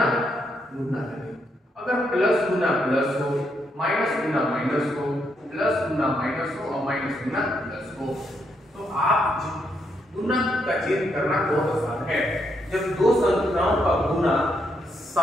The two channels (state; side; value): normal; both; correlation 0.78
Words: गुना का नियम, अगर प्लस गुना प्लस हो, माइनस गुना माइनस हो, प्लस गुना माइनस हो और माइनस गुना प्लस हो, तो आप गुना का चिन्ह करना बहुत आसान है। जब 2 संख्याओं का गुना